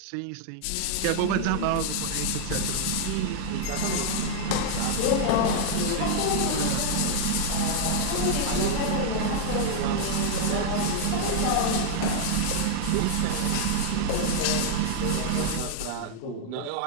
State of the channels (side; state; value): both; different; correlation 0.00